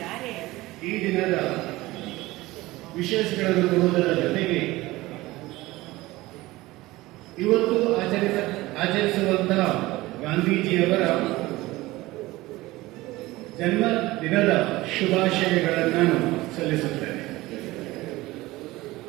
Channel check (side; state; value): left; quieter; 19.1 dB